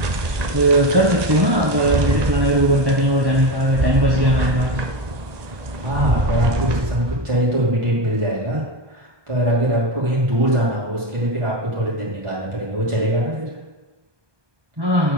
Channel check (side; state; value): left; late; 1.2 ms